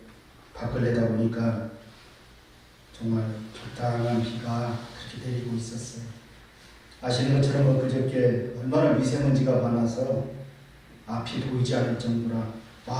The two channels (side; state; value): both; identical; correlation 1.00